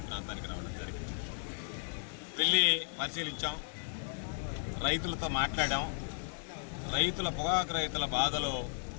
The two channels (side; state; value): right; silent; digital silence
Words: ప్రాంతానికి రావడం జరిగింది. వెళ్ళి పరిశీలించాం, రైతులతో మాట్లాడాం. పొగాకు రైతుల బాధలు